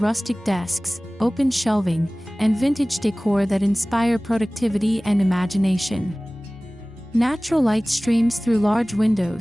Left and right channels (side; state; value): both; normal; correlation 0.98